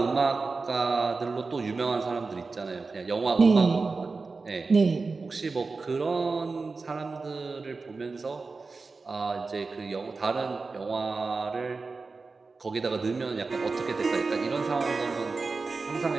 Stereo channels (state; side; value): quieter; left; 4.1 dB